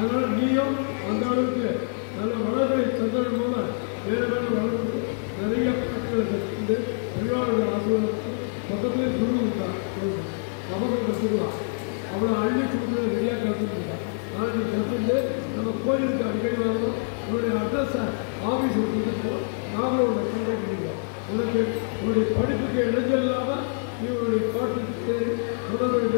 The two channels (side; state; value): right; silent; digital silence